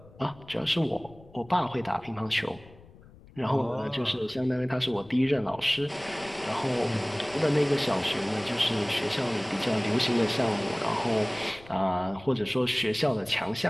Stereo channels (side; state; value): left; noise; rumble, 22 dB below the sound